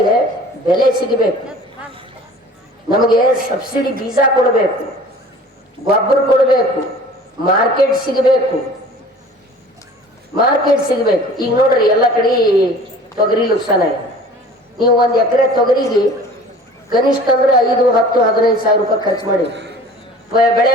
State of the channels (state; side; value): normal; both; correlation 0.45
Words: ಬೆಲೆ ಸಿಗಬೇಕು ನಮಗೆ ಸಬ್ಸಿಡಿ ಬೀಜ ಕೊಡಬೇಕು ಗೊಬ್ಬರ ಕೊಡಬೇಕು ಮಾರ್ಕೆಟ್ ಸಿಗಬೇಕು ಈಗ ನೋಡ್ರಿ ಎಲ್ಲ ಕಡೆ ತೊಗರಿ ನುಕ್ಸಾನ ಇದೆ ನೀವು ಒಂದು ಎಕರೆ ತೊಗರಿಗೆ ಕನಿಷ್ಠ ಅಂದ್ರೆ 5, 10, 15 ಸಾವಿರ ರೂಪಾಯಿ ಖರ್ಚು ಮಾಡಿ ಬೆಳೆ